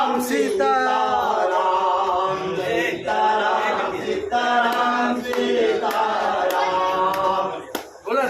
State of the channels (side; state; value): both; identical; correlation 1.00